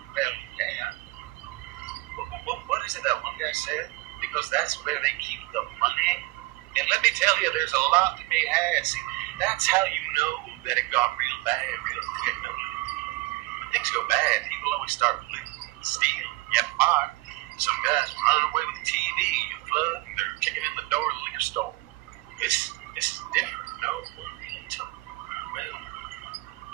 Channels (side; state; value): left; quieter; 22.3 dB